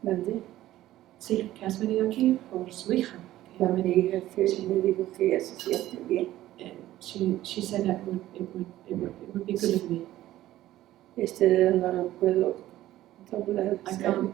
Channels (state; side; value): quieter; left; 14.6 dB